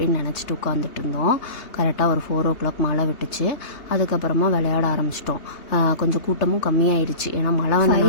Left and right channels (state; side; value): late; right; 3.3 ms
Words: நினச்சிட்டு உட்காந்துட்டு இருந்தோம். கரெக்டாக ஒரு 4 o'clock மழை விட்டுச்சு. அதுக்கப்புறமா விளையாட ஆரம்பிச்சிட்டோம். கொஞ்சம் கூட்டமும் கம்மியாயிருச்சு. ஏன்னா மழை